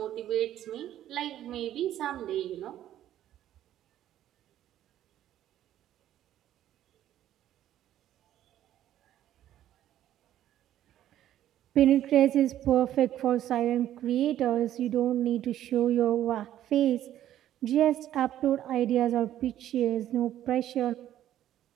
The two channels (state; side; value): quieter; left; 12.1 dB